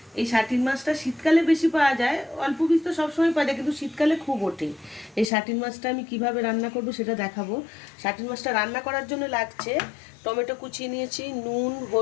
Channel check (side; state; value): right; drops out; at 5.3 s